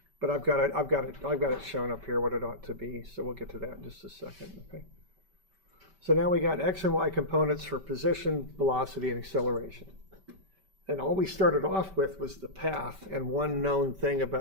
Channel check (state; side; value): late; left; 5.2 ms